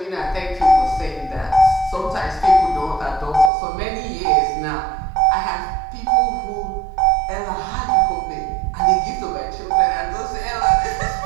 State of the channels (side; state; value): left; drops out; at 3.5 s